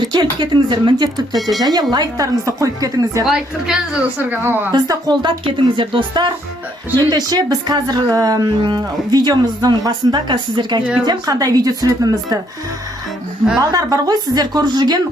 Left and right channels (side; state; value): both; normal; correlation 0.69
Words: кетіңіздер міндетті түрде және лайктарыңызды қойып кетіңіздер. Лайк тіркеліңіздер достарға. Бізді қолдап кетіңіздер достар. Ендеше біз қазір видеомыздың басында сіздерге айтып кетемін қандай видео түсіретінімізді. Балдар бар ғой, сіздер көріп жүрген